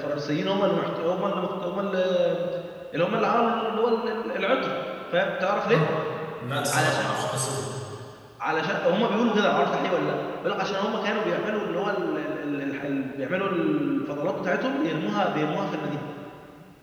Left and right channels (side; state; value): both; identical; correlation 1.00